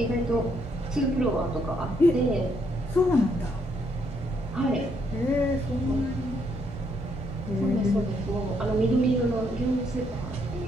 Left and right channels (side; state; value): both; normal; correlation 0.73